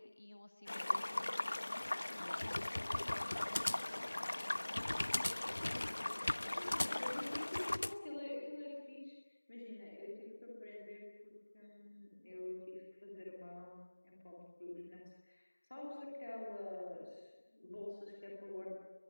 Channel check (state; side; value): inverted; both; correlation -1.00